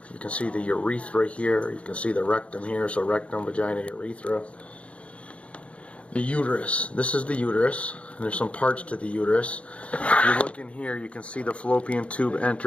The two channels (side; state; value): right; late; 0.062 ms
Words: you can see the urethra here, you can see the rectum here, so rectum, vagina, urethra. The uterus, this is the uterus, and there's some parts to the uterus. If you look in here, you can see the fallopian tube